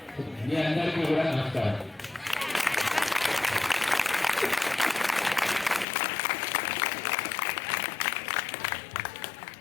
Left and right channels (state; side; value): drops out; right; at 5.9 s